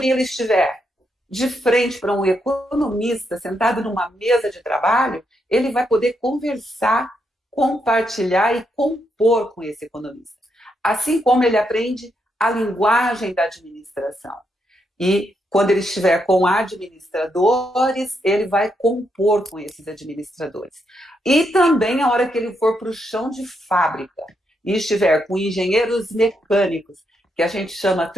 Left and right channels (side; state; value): both; normal; correlation 0.80